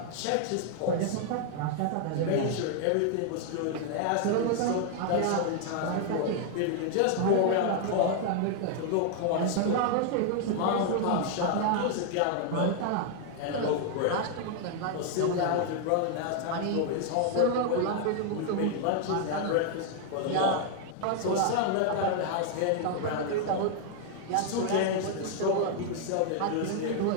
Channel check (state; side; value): different; both; correlation 0.00